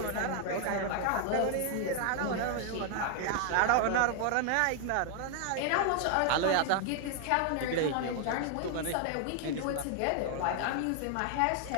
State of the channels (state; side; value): different; both; correlation 0.00